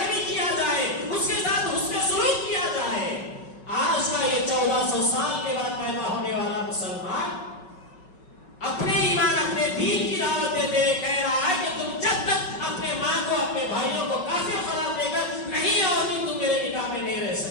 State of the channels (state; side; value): late; right; 5.4 ms